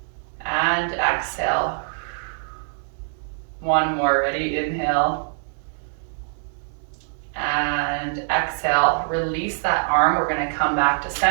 and exhale. 1 more, ready? Inhale And exhale, release that arm. We're gonna come back to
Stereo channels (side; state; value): left; silent; digital silence